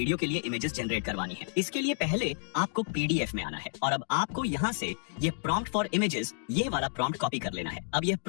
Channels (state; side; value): silent; right; digital silence